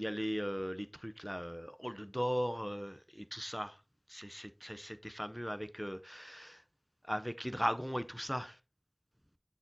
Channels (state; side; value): identical; both; correlation 1.00